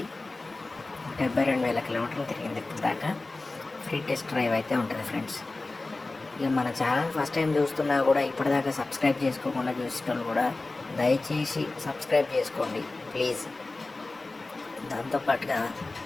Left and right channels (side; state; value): right; quieter; 3.2 dB